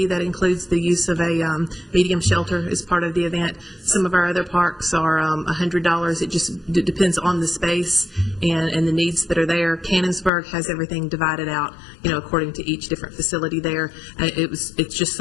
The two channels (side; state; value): right; drops out; at 10.3 s